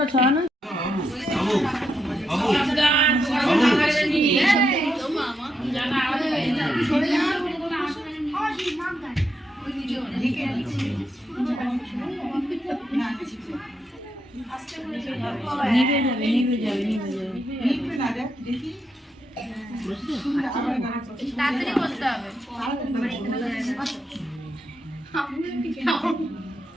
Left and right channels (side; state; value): both; normal; correlation 0.82